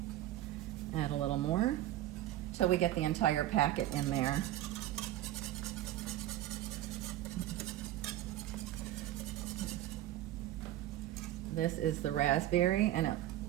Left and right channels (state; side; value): quieter; left; 14.0 dB